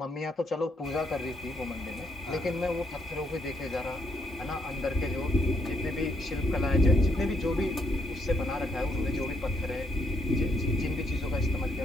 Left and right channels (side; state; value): both; normal; correlation 0.76